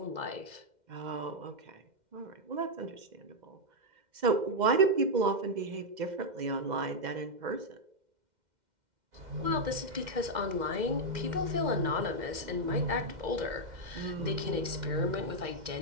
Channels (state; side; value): late; left; 2.1 ms